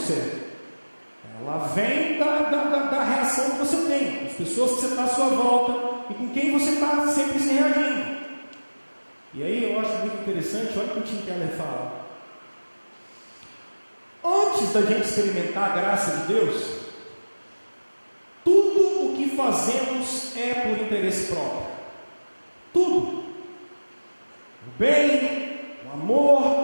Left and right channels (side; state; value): both; inverted; correlation -1.00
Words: Ela vem da reação que você tem, com as pessoas que você está à sua volta e com quem você está sempre se reagindo. E aí eu acho muito interessante, olha o que o Tim Keller fala. Antes da gente experimentar a graça de Deus, tudo o que fazemos é por interesse próprio. Tudo. O bem, o